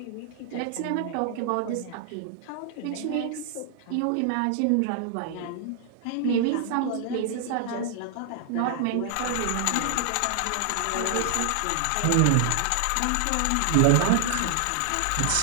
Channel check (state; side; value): different; both; correlation 0.00